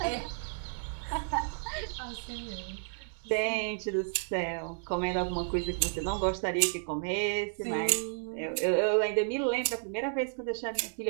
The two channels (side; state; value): left; silent; digital silence